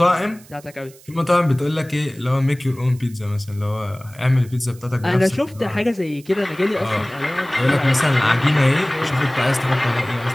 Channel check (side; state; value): right; noise; hiss, 24 dB below the sound